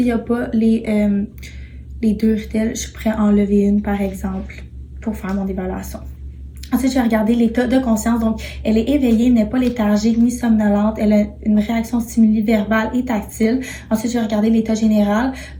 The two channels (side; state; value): both; identical; correlation 1.00